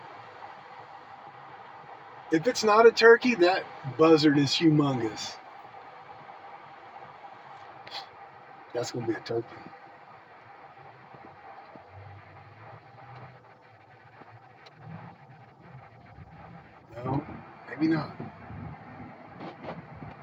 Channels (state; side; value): identical; both; correlation 1.00